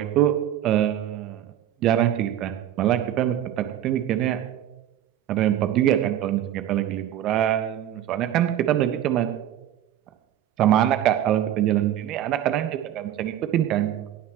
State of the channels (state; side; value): quieter; left; 11.5 dB